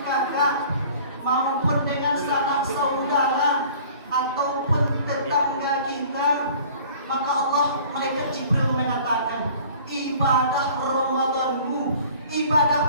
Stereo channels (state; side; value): inverted; both; correlation -0.48